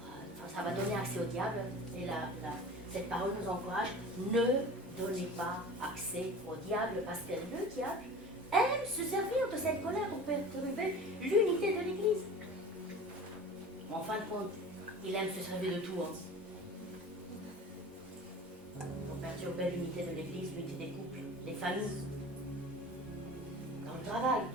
Ça va donner accès au diable. Et cette parole nous encourage, ne donnez pas accès au diable, parce que le diable aime se servir de cette colère pour perturber l'unité de l'Église. En fin de compte, il aime se servir de tout. Pour perturber l'unité de l'Église, l'unité des couples, des familles, dans le travail.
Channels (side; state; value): both; normal; correlation 0.38